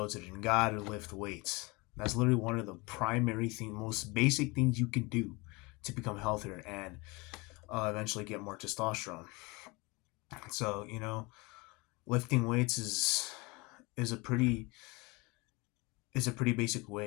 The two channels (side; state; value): right; quieter; 25.8 dB